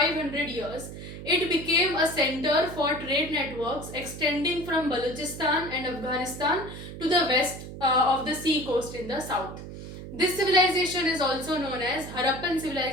years. It became a center for trade networks extending from Balochistan and Afghanistan to the west of the sea coast in the south. This civilization is also known as Harappan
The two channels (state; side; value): noise; right; hum, 11 dB below the sound